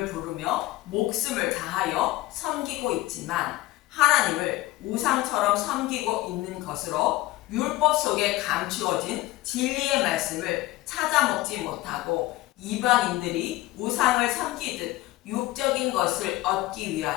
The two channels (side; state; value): right; quieter; 17.8 dB